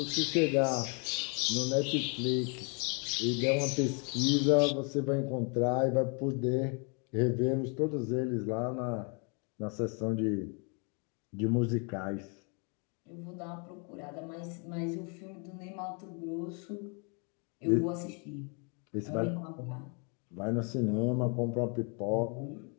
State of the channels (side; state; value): right; quieter; 36.8 dB